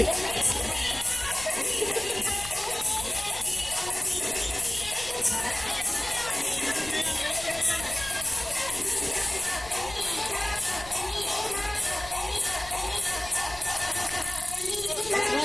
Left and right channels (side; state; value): left; noise; rumble, 15 dB below the sound